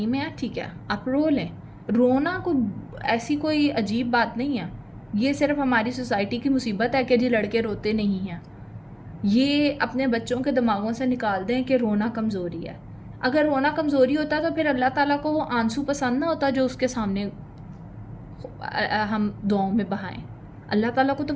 में हैं, ठीक है आप रो लें। रोना को ऐसी कोई अजीब बात नहीं है, ये सिर्फ हमारी सोसाइटी की मुसीबत है कि जी लड़के रोते नहीं हैं। ये अपने बच्चों के दिमागों से निकाल दें कि रोना कमज़ोरी है। अगर रोना कमज़ोरी होता तो फिर अल्लाह ताला को वो आंसू पसंद ना होता जो उसके सामने हम दुआओं में बहाएं। अल्लाह ताला को तो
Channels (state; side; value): identical; both; correlation 1.00